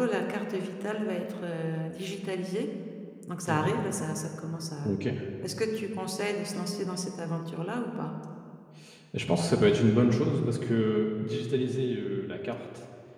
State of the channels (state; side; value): identical; both; correlation 1.00